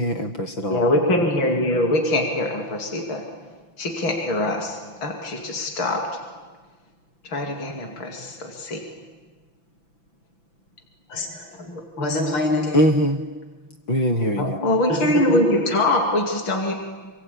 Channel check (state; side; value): late; right; 6.0 ms